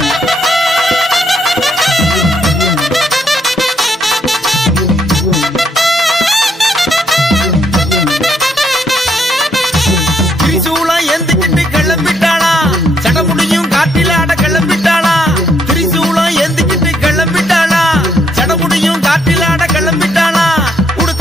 திரிசூலம் ஏந்திக்கிட்டு கிளம்பிட்டாளா சடமுடியும் காட்டில ஆட கிளம்பிட்டாளா திரிசூலம் ஏந்திக்கிட்டு கிளம்பிட்டாளா சடமுடியும் காட்டில ஆட கிளம்பிட்டாளா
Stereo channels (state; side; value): normal; both; correlation 0.74